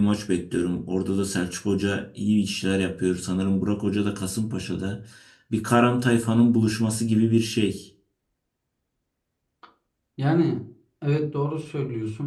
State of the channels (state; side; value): identical; both; correlation 1.00